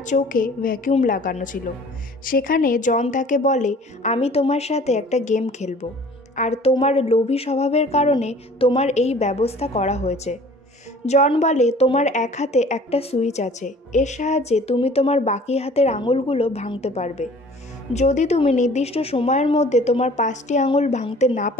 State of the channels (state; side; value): normal; both; correlation 0.49